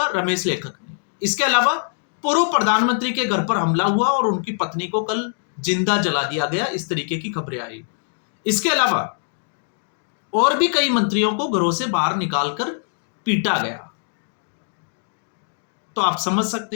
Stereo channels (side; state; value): right; silent; digital silence